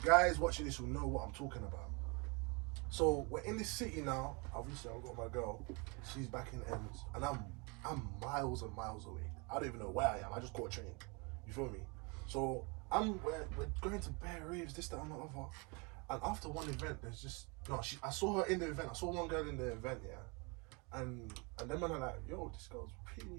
guys watching this will know what I'm talking about. So we're in this city now. Obviously, I've got my girl. She's back in Ends, and I'm miles and miles away. I don't even know where I am. I just caught a train. You feel me? So we're going to bear raves, this, that, and the other. And after one event, there's just I saw her in the event. I saw one girl in the event, yeah. And then man are like, yo, this girl's pretty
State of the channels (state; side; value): quieter; left; 30.6 dB